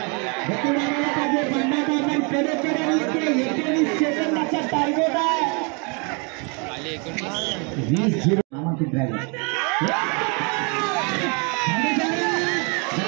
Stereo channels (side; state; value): left; quieter; 33.6 dB